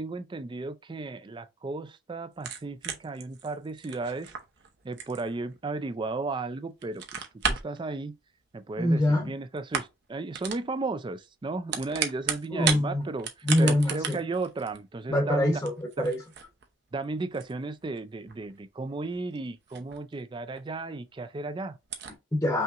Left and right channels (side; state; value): both; normal; correlation 0.67